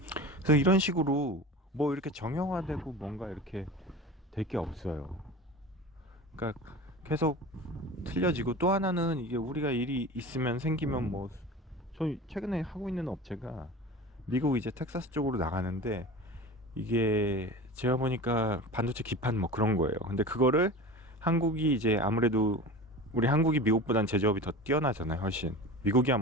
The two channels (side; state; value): both; normal; correlation 0.34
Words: 그래서 이런 식으로 뭐 이렇게 정형화되고 뭔가 이렇게 될 게 없어요. 그러니까 계속 틀려지고, 또 하나는 이게 우리가 일이 있으면 생기면 뭐, 저희 최근에 하고 있는 업체가 미국 이제 텍사스 쪽으로 나가는데, 이게 제가 보니까 반도체 기판 뭐 그런 거예요. 근데 그거를 한국이 이제 아무래도, 우리 한국이 미국보단 제조업이 더 뛰어나잖아요, 훨씬. 미국이야